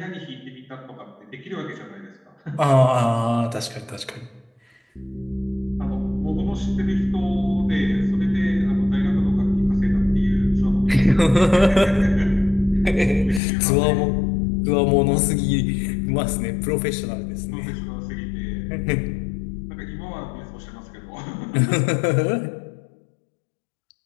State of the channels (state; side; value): drops out; right; at 13.4 s